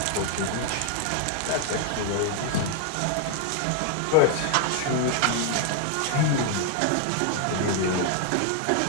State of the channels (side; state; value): both; different; correlation 0.00